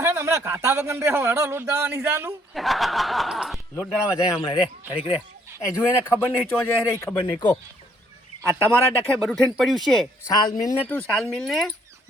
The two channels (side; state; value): both; normal; correlation 0.66